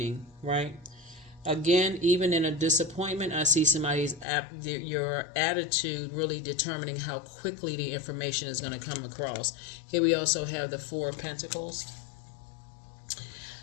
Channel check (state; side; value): drops out; right; at 4.2 s